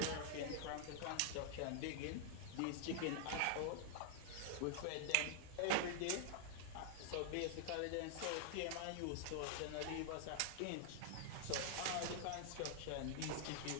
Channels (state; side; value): different; both; correlation 0.00